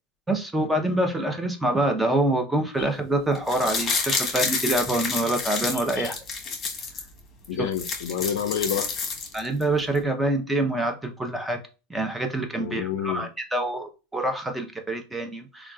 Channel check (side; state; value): both; normal; correlation 0.52